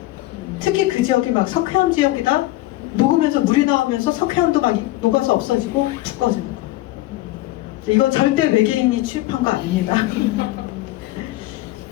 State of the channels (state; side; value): quieter; right; 17.5 dB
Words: 특히 그 지역이 막 석회암 지역이다? 녹으면서 물이 나오면서 석회암도 막 녹아서 없어지고 푹 꺼지는 거예요. 이거 절대 외계인이 취급한 거 아닙니다.